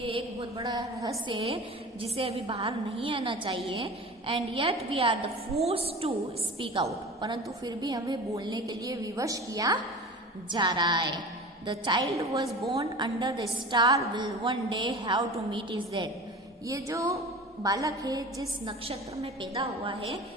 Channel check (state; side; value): normal; both; correlation 0.36